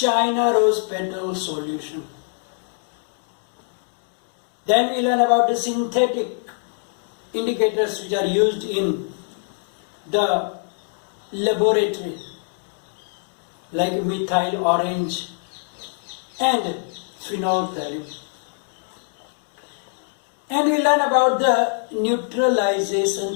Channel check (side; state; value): right; silent; 58 dB below the other